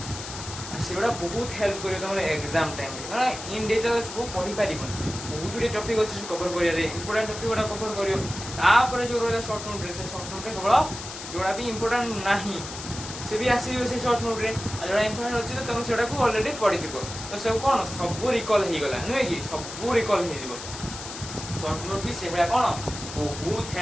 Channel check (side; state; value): left; noise; hiss, 10 dB below the sound